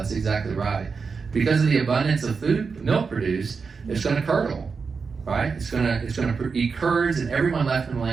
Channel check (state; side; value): quieter; left; 5.1 dB